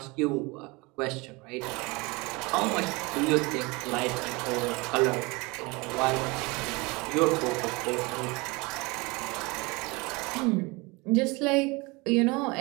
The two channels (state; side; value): quieter; left; 25.6 dB